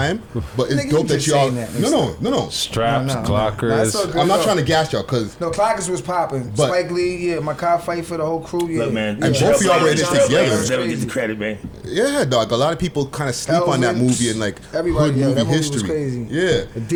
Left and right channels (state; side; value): identical; both; correlation 1.00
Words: But it's Nigga, dope you that just y'all. saying that. No. Straps, No, clockers. that's all good. I'm not No. trying to gas y'all because. No, Clockers was popping. But- Spike Lee, yeah, Makai Fight for the whole crew, yeah. Look, man. And both of y'all were in this together. Never get the credit, man. Yeah, dog. A lot of people kind of sleep on that Elvis, movie and like everybody, hood yeah, movie that movie history. was crazy. Yeah.